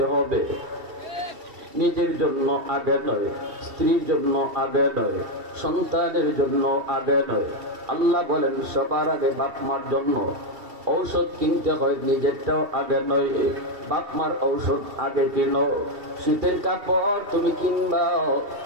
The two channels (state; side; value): late; left; 2.7 ms